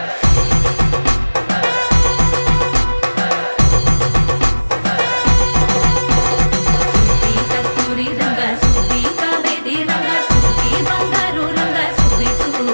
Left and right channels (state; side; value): inverted; both; correlation -1.00